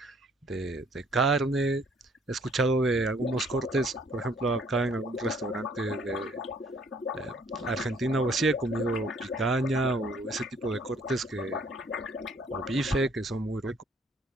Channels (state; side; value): normal; both; correlation 0.61